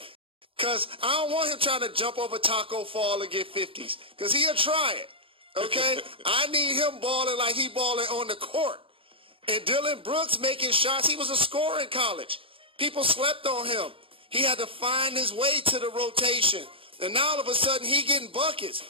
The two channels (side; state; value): left; late; 0.26 ms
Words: because I don't want him trying to jump over Taco Fall and get 50s because he'll try it. Okay? I need him balling like he balling on the court. And Dillon Brooks making shots. He was a scorer in college. People slept on him. He had to find his way to the rotation. And now all of a sudden he getting buckets.